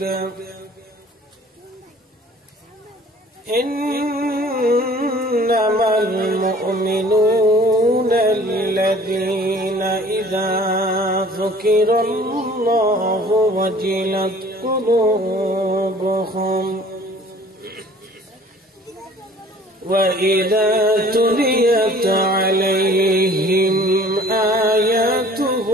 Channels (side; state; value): both; normal; correlation 0.50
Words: इन्नमल मुअमिनूना अल्लज़ीना इज़ा ज़ुकिरल्लाहु वजिलत क़ुलूबुहुम वइज़ा तुलियत अलैहिम